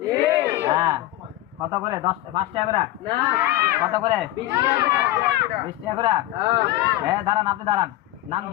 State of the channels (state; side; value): quieter; right; 15.4 dB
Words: হ্যাঁ, কত করে? 5 টাকা করে? কত করে? 20 টাকা করে? হ্যাঁ, দাঁড়ান, আপনি দাঁড়ান। নাম